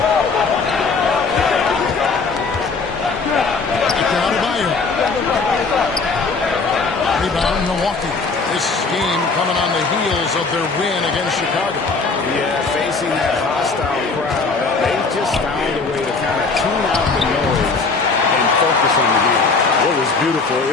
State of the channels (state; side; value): quieter; right; 4.3 dB